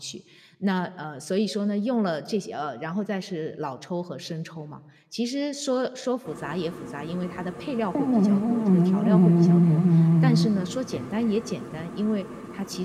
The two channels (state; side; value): identical; both; correlation 1.00